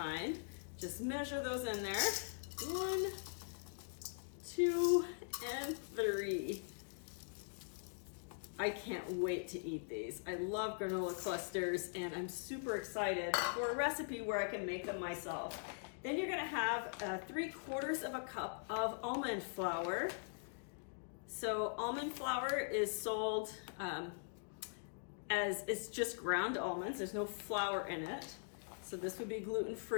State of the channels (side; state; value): right; silent; digital silence